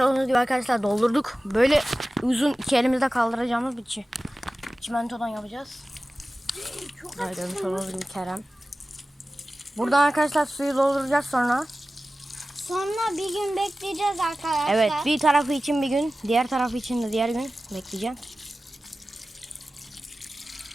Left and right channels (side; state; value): both; normal; correlation 0.96